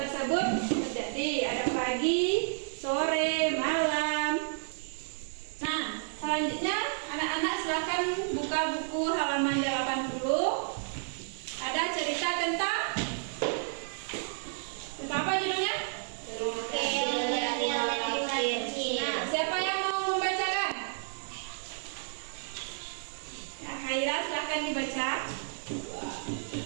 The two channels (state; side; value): silent; left; 57 dB below the other